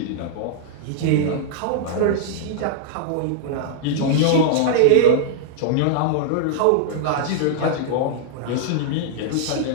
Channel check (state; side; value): different; both; correlation -0.01